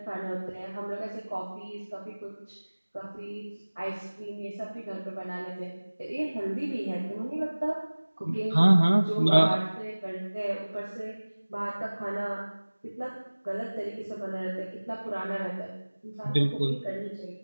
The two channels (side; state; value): both; inverted; correlation -1.00